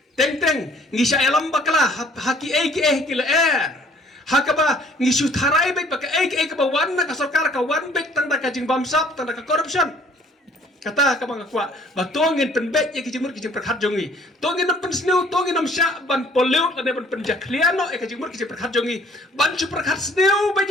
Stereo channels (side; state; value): both; normal; correlation 0.57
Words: teng ngisa elam bakala haki ki la hakaba ngisu tharai bet baka ka ba wan na ka sarkar ka wan bet tang da kajing bamsap tang da ka corruption kata ka bang kwa ba tongin pen bet ki jimur ki jim prakhat jongi tongin nam pen sneu tongin nam sha ban pollute la ne ban pen jakliano ka jimur ki jim prakhat jongi ban chu prakhat sneu ba